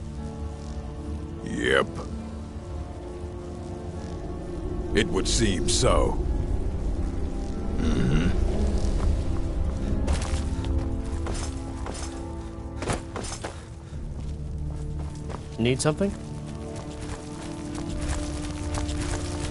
Yep. It would seem so. Mm-hmm. Need something?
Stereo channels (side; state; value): both; identical; correlation 1.00